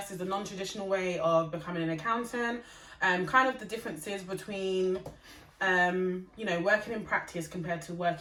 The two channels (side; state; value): both; identical; correlation 1.00